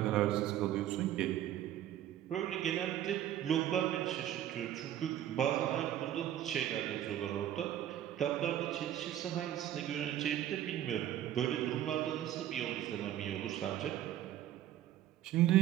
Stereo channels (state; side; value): quieter; left; 12.0 dB